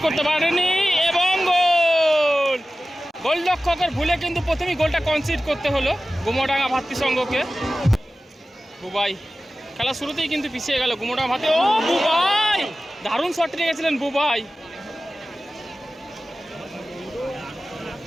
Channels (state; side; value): normal; both; correlation 0.96